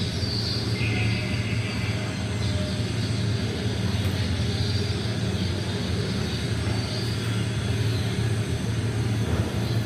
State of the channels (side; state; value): both; identical; correlation 1.00